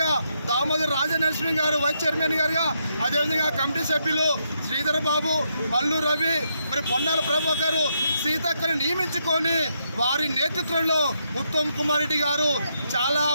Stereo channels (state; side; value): inverted; both; correlation -0.78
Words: దామోదర్ రాజనరసింహ గారు వైస్ చైర్మన్ గారుగా, అదేవిధంగా కమిటీ సభ్యులు శ్రీధర్ బాబు, మల్లు రవి, మరి పొన్నాల ప్రభాకర్, సీతక్కని నియమించుకొని వారి నేతృత్వంలో ఉత్తమ్ కుమార్ రెడ్డి గారు చాలా